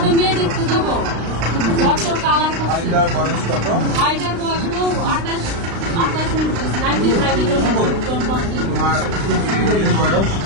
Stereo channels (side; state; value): left; late; 35 ms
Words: মেয়ে দেখতে যাবো ঘরটার কালার করছে আইটার বয়স